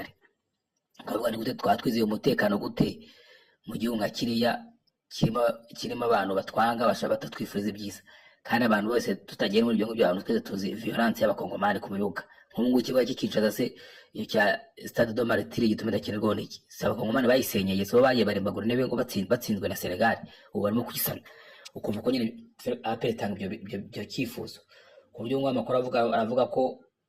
Akavuga ni gute twatwizeye umutekano gute mu gihugu nka kiriya kirimo abantu batwanga batatwifuriza ibyiza, kandi abantu bose tutagiye muri ibyo ngibyo, abantu twese tuzi violence y'abakongomani ku bibuga. Nk'ubu ikibuga cy'ikincaza se iyo cya Stade de Martyrs gituma idakinirwaho n'iki, si abakongomani bayisenyeye, so bagiye barembagura intebe ngo batsinzwe na Senegal, ubu barimo kuyisana. Ukumva ko nyine APR itanga ibyo cyifuzo, ku buryo ngo amakuru aravuga ko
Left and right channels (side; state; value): both; identical; correlation 1.00